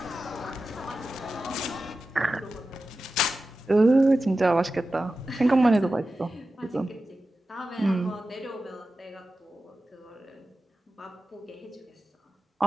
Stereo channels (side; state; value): both; normal; correlation 0.93